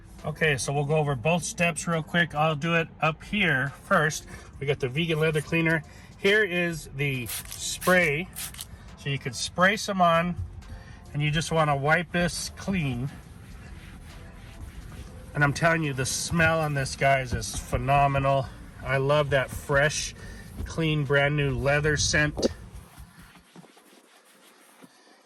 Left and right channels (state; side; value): identical; both; correlation 1.00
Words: Okay, so we'll go over both steps real quick. I'll do it up here first. We got the vegan leather cleaner. Here is the spray. So you could spray some on, and you just want to wipe this clean. And I'm telling you, the smell on this, guys, is phenomenal. I love that fresh, clean, brand new leather scent.